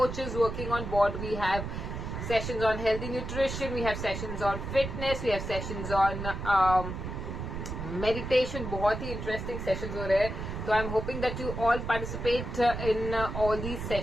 working on board. We have sessions on healthy nutrition, we have sessions on fitness, we have sessions on meditation. बहुत ही interesting sessions हो रहे हैं. So I'm hoping that you all participate in all these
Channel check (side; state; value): right; noise; rumble, 6 dB below the sound